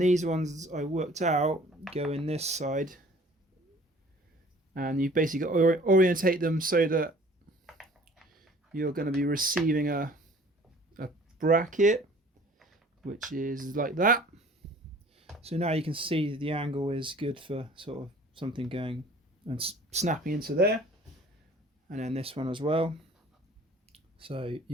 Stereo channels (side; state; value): both; normal; correlation 0.51